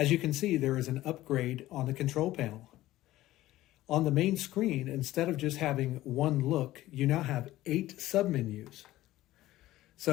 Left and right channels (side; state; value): right; quieter; 15.8 dB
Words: you can see, there is an upgrade on the control panel. On the main screen, instead of just having one look, you now have 8 submenus.